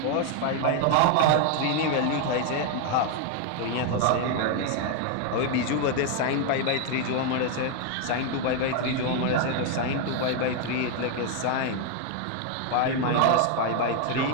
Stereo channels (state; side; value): different; both; correlation 0.01